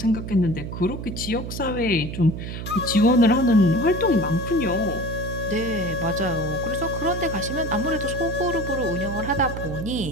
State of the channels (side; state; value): right; noise; hum, 7 dB below the sound